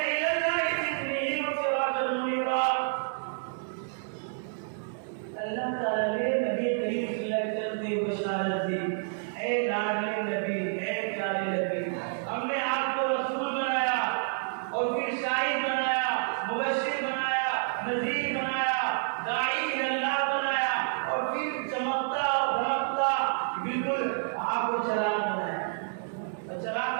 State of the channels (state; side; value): silent; left; digital silence